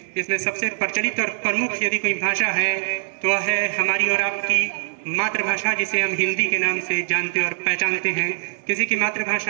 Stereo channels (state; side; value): silent; left; 64 dB below the other